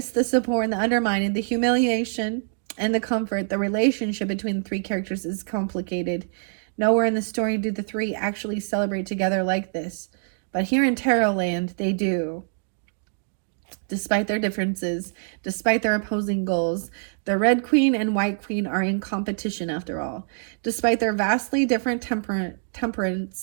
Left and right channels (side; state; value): left; silent; digital silence